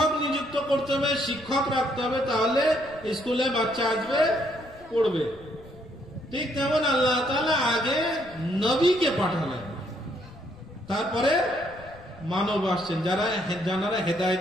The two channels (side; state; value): left; noise; rumble, 22 dB below the sound